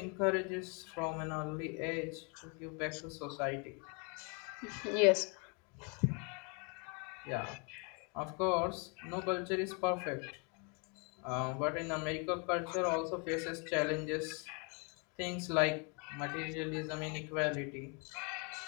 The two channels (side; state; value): right; quieter; 34.7 dB